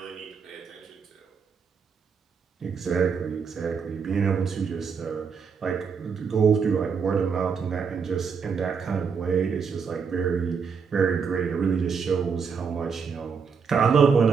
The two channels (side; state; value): left; quieter; 6.0 dB